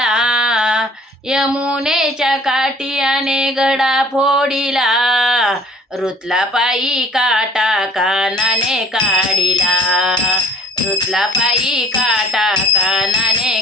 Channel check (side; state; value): both; normal; correlation 0.54